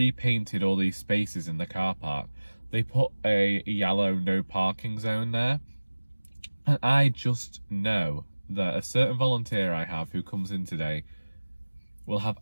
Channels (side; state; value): both; inverted; correlation -1.00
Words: all these spaces in the car park, they put a yellow no parking zone there. And I just know that a certain volunteer I have who comes in today will have